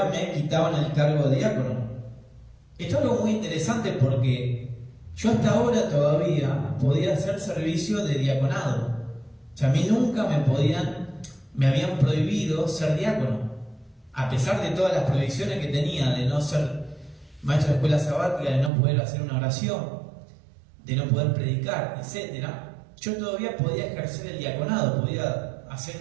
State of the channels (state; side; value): drops out; left; at 18.7 s